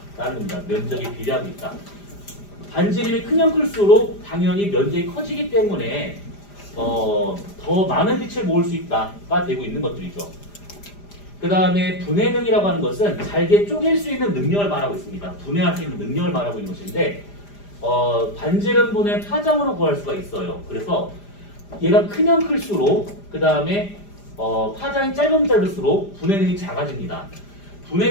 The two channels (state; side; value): late; right; 5.0 ms